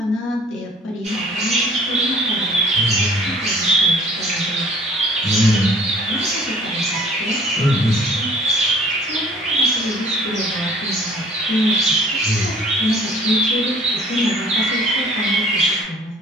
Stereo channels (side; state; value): both; normal; correlation 0.52